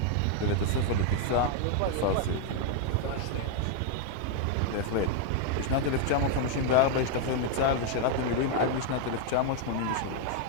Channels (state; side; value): different; both; correlation 0.00